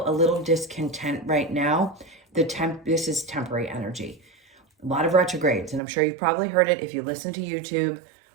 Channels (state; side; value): drops out; left; at 5.8 s